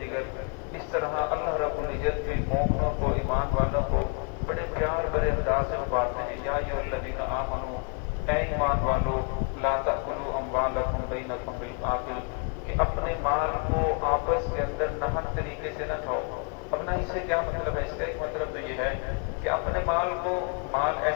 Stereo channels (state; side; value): quieter; right; 36.0 dB